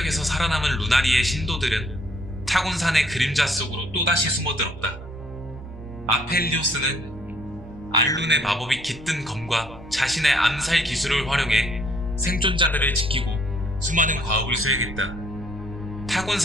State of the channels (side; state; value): both; normal; correlation 0.64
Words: 살아남은 루나리의 신도들은 타곤산의 그림자 속으로 또다시 숨어들었다. 아펠리오스는 알룬의 마법이 깃든 검과 자신의 암살 기술을 활용해 생존자들을 지키고 수많은 과업을 수행했다.